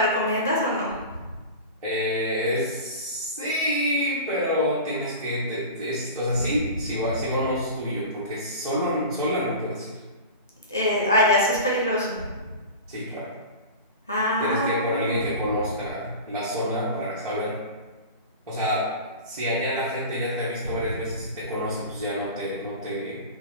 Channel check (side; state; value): both; inverted; correlation -0.32